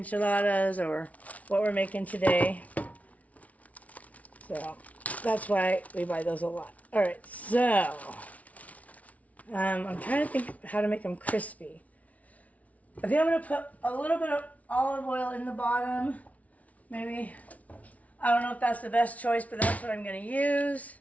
or what we're making today. So that's why we buy those a lot. All right, so I'm trying to think how to make them crispy. I think I'm going to put a little bit of olive oil in the bottom, maybe. I don't know if that's the best choice, but that's what I'm going to use.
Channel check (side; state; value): right; late; 0.068 ms